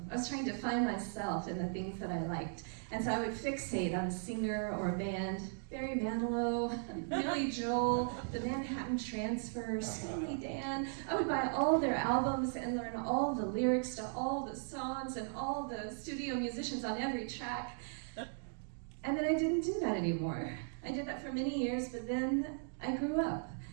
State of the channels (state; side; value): silent; left; digital silence